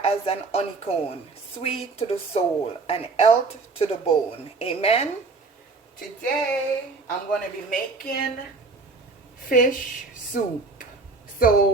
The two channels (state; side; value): quieter; left; 4.0 dB